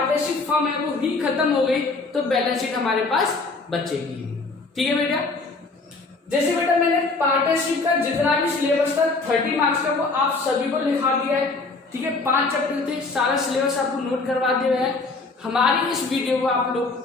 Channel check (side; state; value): right; quieter; 3.7 dB